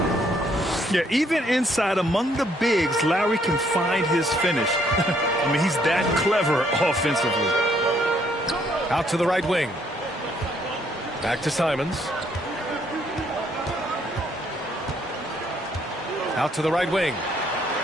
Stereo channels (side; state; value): both; normal; correlation 0.68